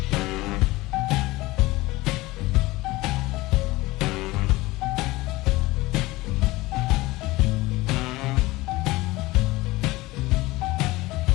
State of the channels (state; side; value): quieter; right; 20.0 dB